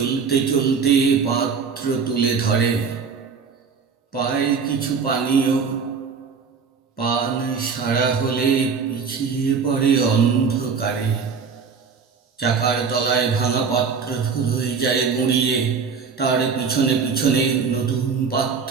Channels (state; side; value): quieter; left; 5.6 dB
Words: চলতে পাত্র তুলে ধরে। পায় কিছু পানীয়, পান সারা হলে পিছিয়ে পড়ে অন্ধকারে। চাকার তলায় ভাঙা পাত্র ধুলোয় যায় গুঁড়িয়ে, তার পিছনে পিছনে নতুন